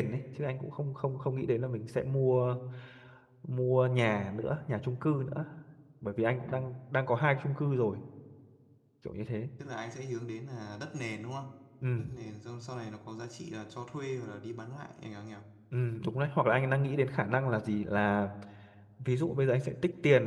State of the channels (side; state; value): both; identical; correlation 1.00